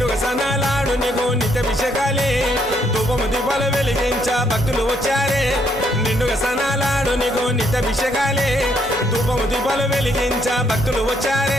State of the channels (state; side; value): normal; both; correlation 0.71